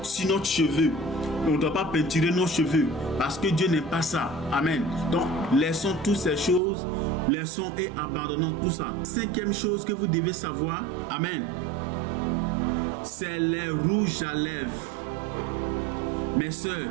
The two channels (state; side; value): drops out; left; at 6.6 s